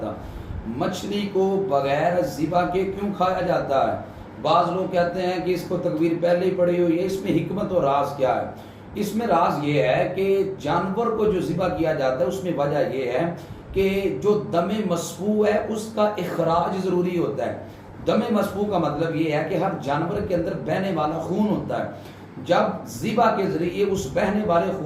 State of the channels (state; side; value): identical; both; correlation 1.00